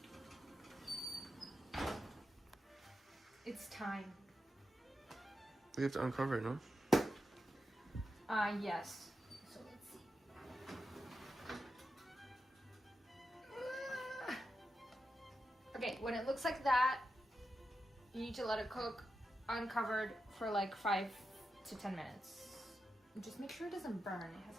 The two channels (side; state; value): both; normal; correlation 0.89